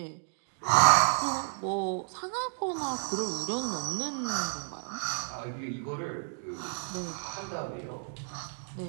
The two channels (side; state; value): left; silent; digital silence